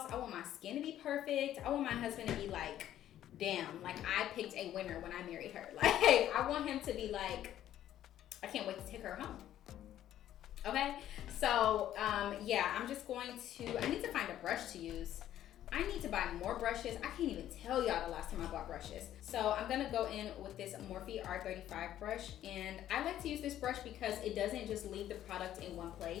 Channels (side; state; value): right; quieter; 12.0 dB